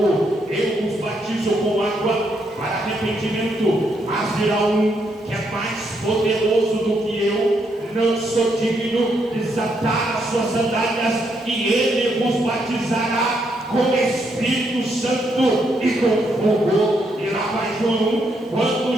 Eu vos batizo com água para arrependimento, mas virá um que é mais poderoso do que eu. Não sou digno de desatar as suas sandálias, e ele vos batizará com Espírito Santo e com fogo. E lá vai João. Quando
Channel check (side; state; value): both; normal; correlation 0.76